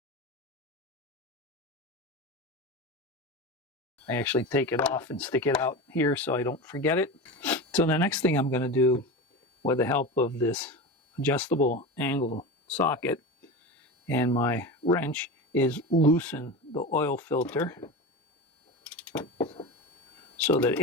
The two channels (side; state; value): both; normal; correlation 0.25